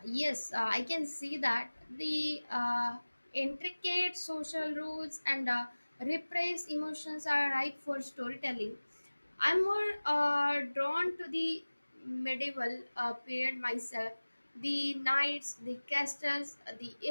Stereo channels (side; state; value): both; inverted; correlation -1.00